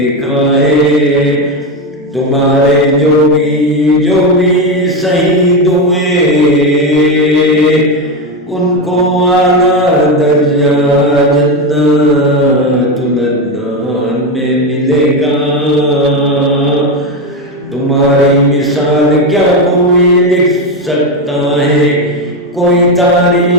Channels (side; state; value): both; normal; correlation 0.13